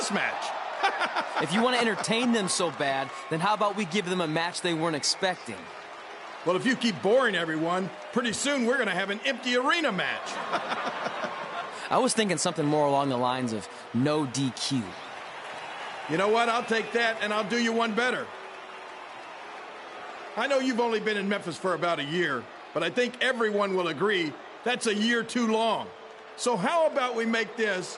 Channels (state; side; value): identical; both; correlation 1.00